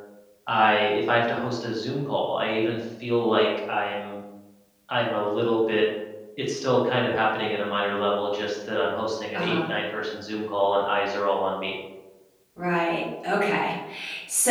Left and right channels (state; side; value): identical; both; correlation 1.00